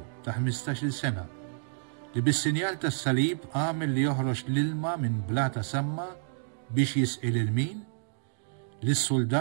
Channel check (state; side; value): silent; left; digital silence